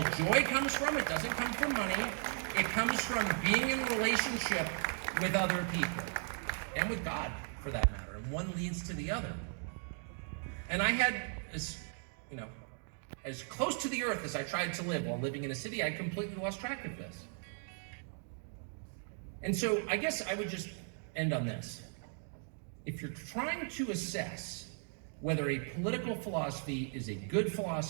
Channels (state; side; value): silent; left; 53 dB below the other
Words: joy comes from. It doesn't come from money. It comes from being in relationship with other people and with God, for that matter. And one leads to the other. And I had, as close to the earth as I tried to live while living in a city, I completely lost track of this. And so I guess I would just end on this. If you're trying to assess whether a political philosophy is a good